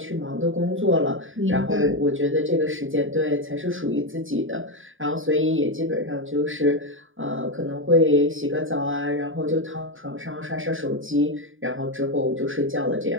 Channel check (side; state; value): left; late; 0.58 ms